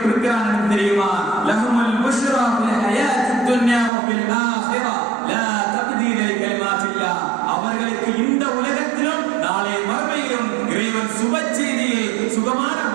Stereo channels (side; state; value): left; drops out; at 3.9 s